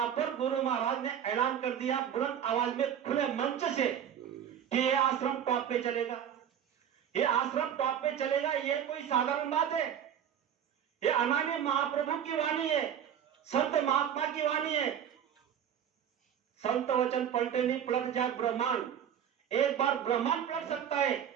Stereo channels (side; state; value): left; quieter; 9.1 dB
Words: पर गुरु महाराज ने ऐलान कर दिया बुलंद आवाज में खुले मंच से कि ये आश्रम टॉप पे चलेगा, ये आश्रम टॉप पे चलेगा। ये कोई साधारण बात है, ये अनामी महाप्रभु की वाणी है, संत महात्मा की वाणी है। संत वचन पलटे नहीं पलट जाए ब्रह्मांड। एक बार ब्रह्मांड पलट सकता है,